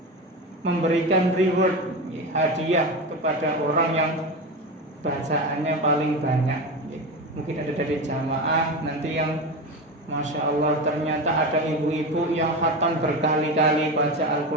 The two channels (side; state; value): both; normal; correlation 0.22